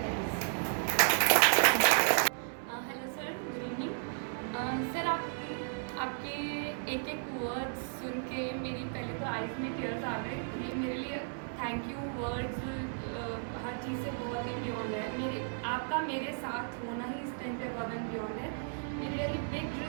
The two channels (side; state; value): left; silent; 55 dB below the other